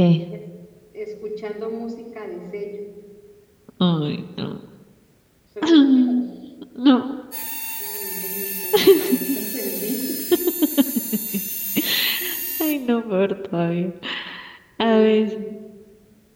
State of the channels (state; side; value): identical; both; correlation 1.00